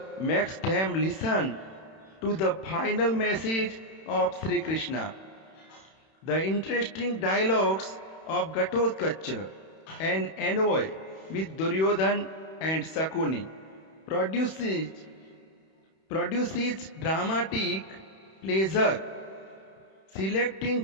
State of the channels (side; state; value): right; late; 31 ms